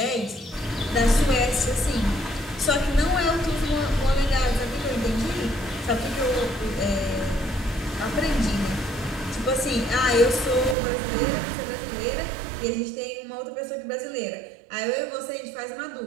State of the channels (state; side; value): drops out; left; at 10.8 s